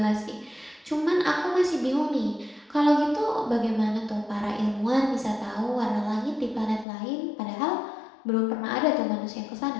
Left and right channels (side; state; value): right; drops out; at 6.9 s